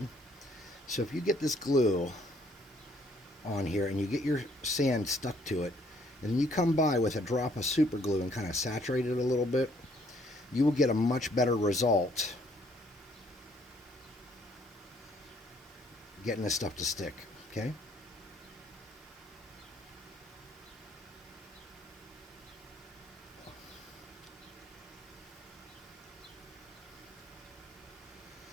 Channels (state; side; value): normal; both; correlation 0.65